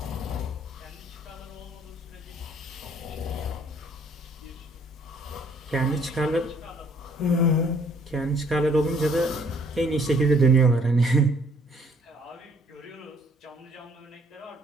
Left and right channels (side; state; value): both; normal; correlation 0.62